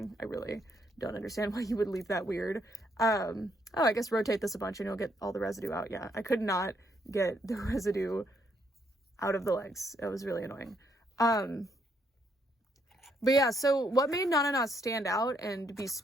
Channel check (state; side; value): normal; both; correlation 0.73